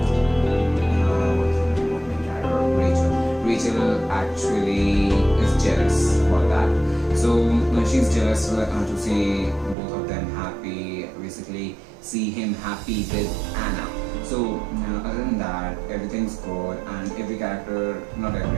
what's the name of the character? Rachel actually is jealous about that. So she's jealous to see both of them happy, basically see him happy with Anna. So other than that, everything's good, and every character, not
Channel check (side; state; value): left; drops out; at 9.8 s